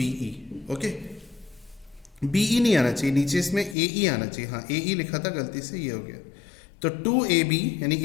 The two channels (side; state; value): right; drops out; at 3.8 s